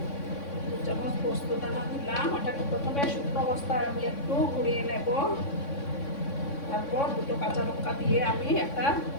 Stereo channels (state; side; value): late; right; 3.6 ms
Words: 2 চামচ পোস্ত দানা দিলাম। ওটাকে প্রথমে শুকনো অবস্থায় আমি একটু ঘুরিয়ে নেব। তারপর 2টো কাঁচা লঙ্কা দিয়ে আমি একটা